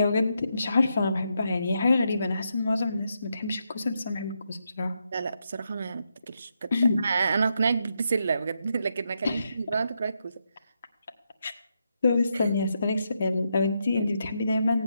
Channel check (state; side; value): inverted; both; correlation -0.81